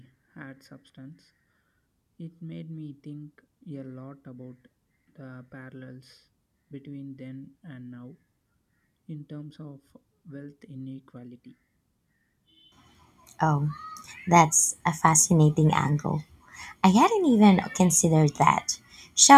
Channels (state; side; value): identical; both; correlation 1.00